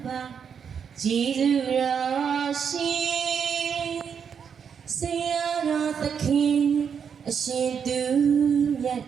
ပါကျေးဇူးတော်ရှင်ဆရာတော်သခင်အရှင်သူမြတ်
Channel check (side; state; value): left; quieter; 7.1 dB